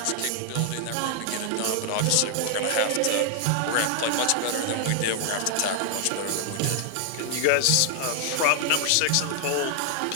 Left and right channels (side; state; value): both; different; correlation 0.00